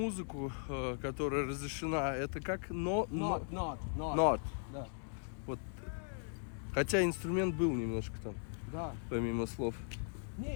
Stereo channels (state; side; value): silent; right; digital silence